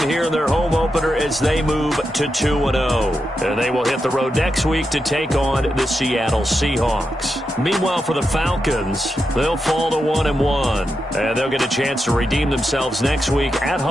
here in their home opener as they move to 2-0. And they will hit the road next week to take on the Seattle Seahawks. Meanwhile, for the Falcons, they'll fall to 1-1. And they'll get a chance to redeem themselves next week at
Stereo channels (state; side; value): normal; both; correlation 0.87